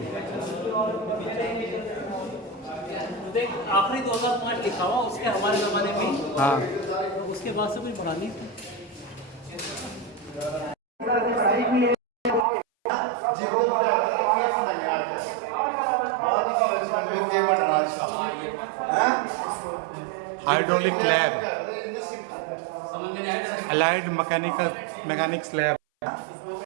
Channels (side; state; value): left; drops out; at 12.5 s